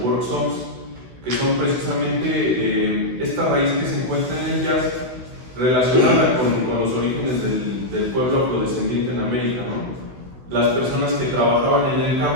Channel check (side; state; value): left; late; 16 ms